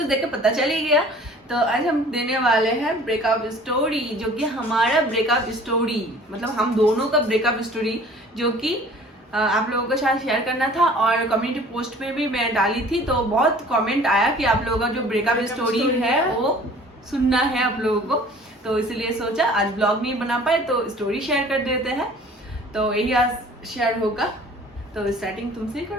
देख के पता चल ही गया। तो आज हम देने वाले हैं ब्रेकअप स्टोरी, जो कि हमारा ब्रेकअप स्टोरी, मतलब हम दोनों का ब्रेकअप स्टोरी, जो कि आप लोगों के साथ शेयर करना था। और कम्युनिटी पोस्ट पे भी मैं डाली थी, तो बहुत कमेंट आया कि आप लोगों का जो ब्रेकअप स्टोरी है वो सुनना है आप लोगों को। तो इसलिए सोचा आज ब्लॉग नहीं बना पाए तो स्टोरी शेयर कर देते हैं। तो यही आज शेयर होगा। तो स्टार्टिंग तुमसे ही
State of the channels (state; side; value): normal; both; correlation 0.49